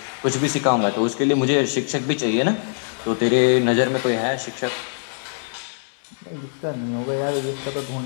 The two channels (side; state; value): right; silent; 64 dB below the other